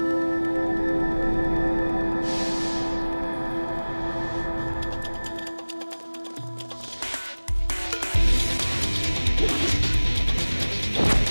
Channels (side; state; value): both; inverted; correlation -1.00